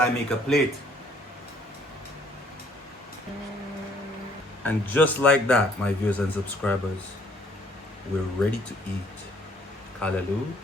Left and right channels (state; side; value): normal; both; correlation 0.61